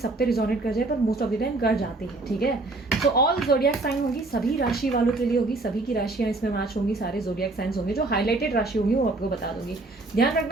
पे रिजोनेट कर जाए, पर मोस्ट ऑफ द टाइम कर जाती है। ठीक है, तो ऑल जोडियक साइन होगी, सभी राशि वालों के लिए होगी, सभी की राशियां इसमें मैच होंगी, सारे जोडियक साइंस होंगे। जो हाईलाइटेड राशि होंगी वो आपको बता दूंगी। ध्यान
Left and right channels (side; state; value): left; quieter; 3.1 dB